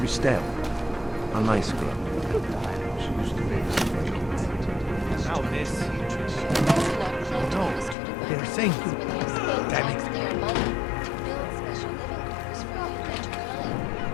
A nice girl. She used to babysit my Now this. Oh no, they're saying to... Damn it.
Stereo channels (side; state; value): right; drops out; at 8.0 s